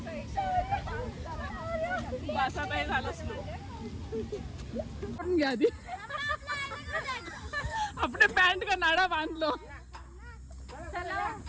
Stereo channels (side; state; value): both; identical; correlation 1.00